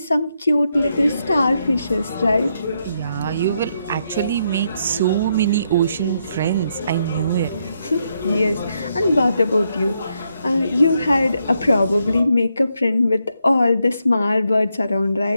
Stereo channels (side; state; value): both; inverted; correlation -0.79